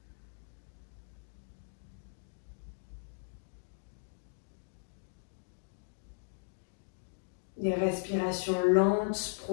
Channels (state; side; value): silent; right; digital silence